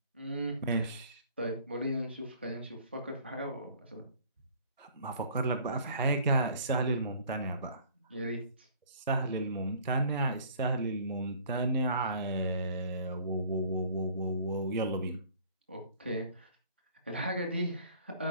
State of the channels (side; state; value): both; inverted; correlation -0.53